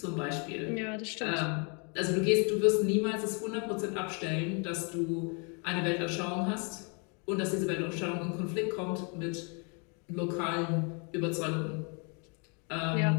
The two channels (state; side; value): quieter; right; 36.2 dB